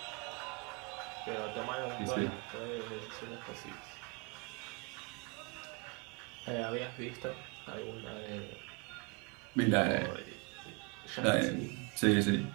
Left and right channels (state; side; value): quieter; left; 32.0 dB